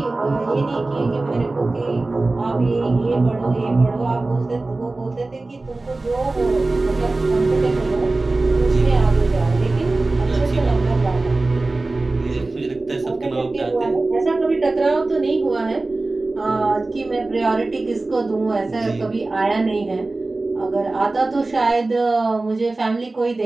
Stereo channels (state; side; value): quieter; left; 3.2 dB